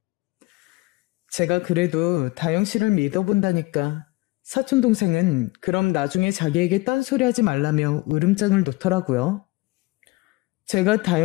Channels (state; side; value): quieter; right; 22.1 dB